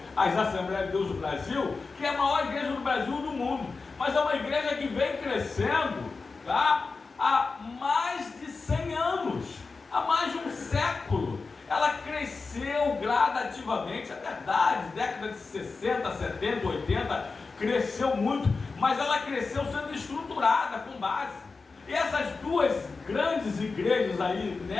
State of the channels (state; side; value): quieter; right; 4.2 dB